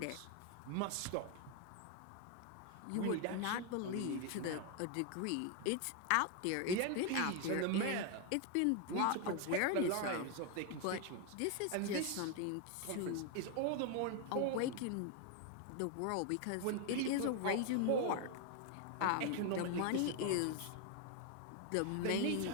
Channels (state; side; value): different; both; correlation 0.01